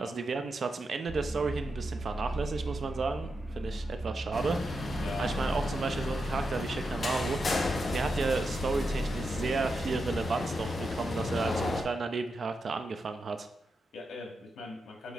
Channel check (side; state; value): both; normal; correlation 0.87